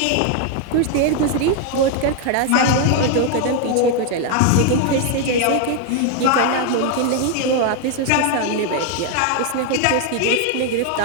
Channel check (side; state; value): both; different; correlation 0.00